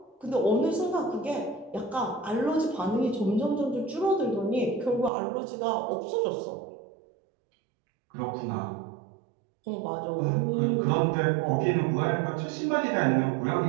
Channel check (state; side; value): drops out; left; at 5.1 s